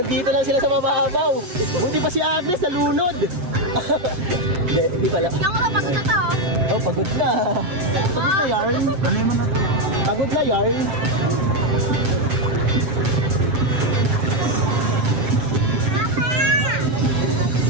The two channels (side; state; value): left; late; 7.9 ms